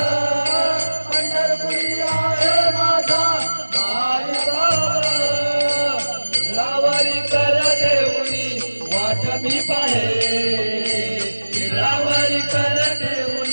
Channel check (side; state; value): both; inverted; correlation -1.00